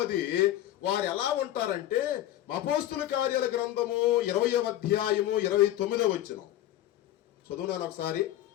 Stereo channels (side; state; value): right; quieter; 13.4 dB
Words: వారు ఎలా ఉంటారంటే అపోస్తుల కార్యాల గ్రంథము 20వ అధ్యాయము 29వ వచనం చదువునాను ఒకసారి.